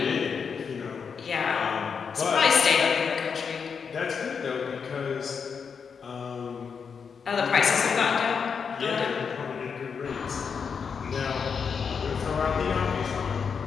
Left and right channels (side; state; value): right; quieter; 6.2 dB